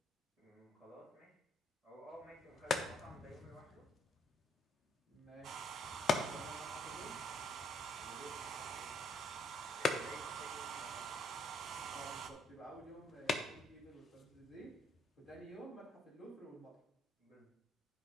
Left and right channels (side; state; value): both; normal; correlation 0.68